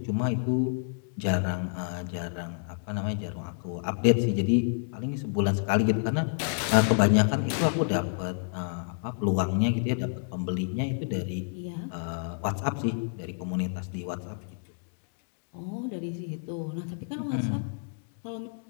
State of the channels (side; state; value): right; silent; digital silence